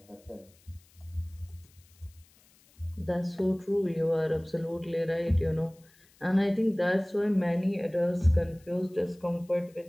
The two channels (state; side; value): noise; left; hiss, 30 dB below the sound